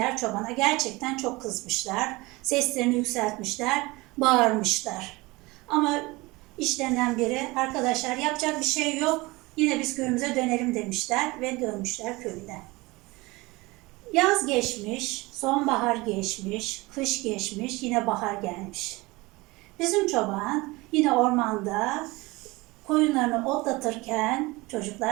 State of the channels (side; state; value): left; quieter; 22.6 dB